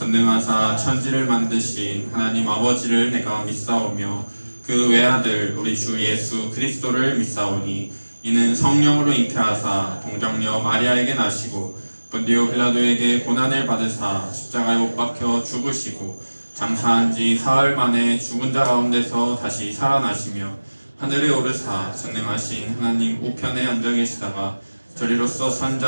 천지를 만드신 하나님 아버지를 내가 믿사오며 그 외아들 우리 주 예수 그리스도를 믿사오니 이는 성령으로 잉태하사 동정녀 마리아에게 나시고 본디오 빌라도에게 고난을 받으사 십자가에 못 박혀 죽으시고 장사한 지 사흘 만에 죽은 자 가운데서 다시 살아나시며 하늘에 오르사 전능하신 하나님 우편에 앉아 계시다가 저리로서 산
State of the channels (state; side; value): inverted; both; correlation -1.00